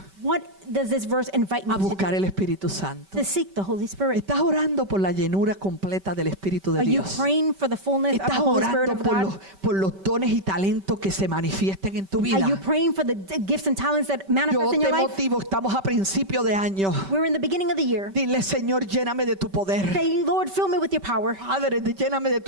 What does this verse invite me A to do? buscar el Espíritu Santo. To seek the Holy Spirit. Estás orando por la llenura completa del Espíritu de Are you Dios. praying for the fullness of the Estás Holy Spirit orando of God? por los dones y talentos que se manifiesten en tu vida. Are you praying for the gifts and talents that Yo manifest in te your life? motivo, estamos a principio de año. We're in the beginning of the year. Dile, Señor, lléname de tu poder. Say, Lord, fill me with your power. Padre, lléname de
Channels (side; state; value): left; late; 5.2 ms